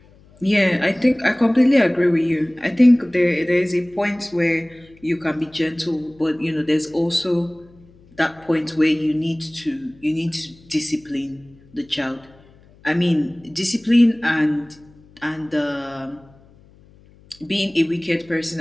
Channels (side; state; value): left; noise; hum, 27 dB below the sound